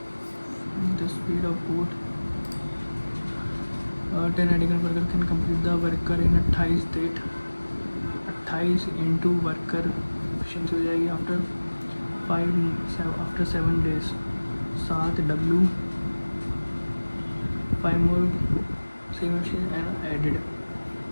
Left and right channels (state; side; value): inverted; both; correlation -1.00